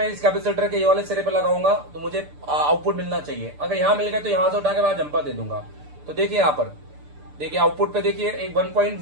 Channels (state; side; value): late; left; 6.8 ms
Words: इस कैपेसिटर के ये वाले सिरे पे लगाऊंगा तो मुझे आउटपुट मिलना चाहिए। अगर यहाँ मिल गया तो यहाँ से उठा के वहां जंपर दे दूंगा। तो देखिए यहाँ पर, देखिए आउटपुट पे देखिए एक 1 पॉइंट